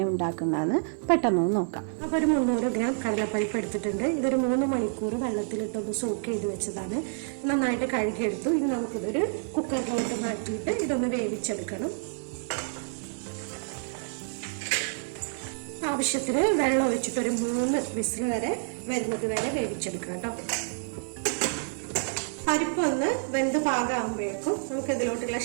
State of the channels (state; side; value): silent; left; 59 dB below the other